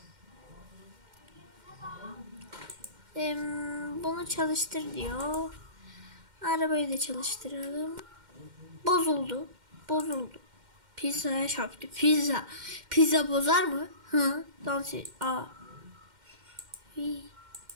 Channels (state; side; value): late; left; 2.1 ms